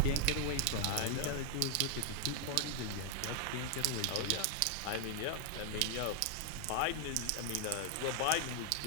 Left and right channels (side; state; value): both; different; correlation -0.01